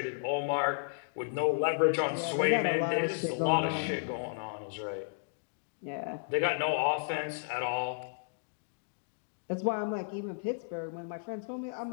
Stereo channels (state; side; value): silent; right; digital silence